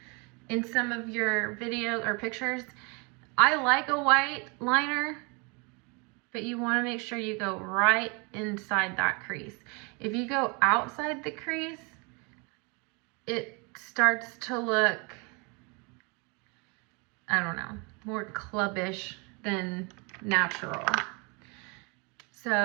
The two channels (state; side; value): quieter; left; 31.4 dB